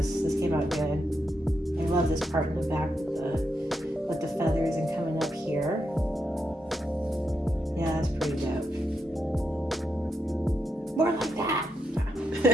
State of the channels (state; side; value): normal; both; correlation 0.83